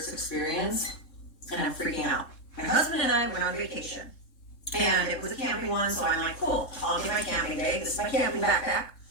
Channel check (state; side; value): late; right; 3.7 ms